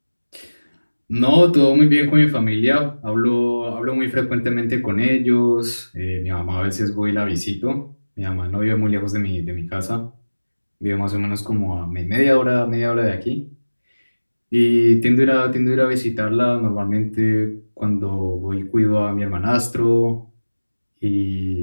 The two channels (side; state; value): both; inverted; correlation -1.00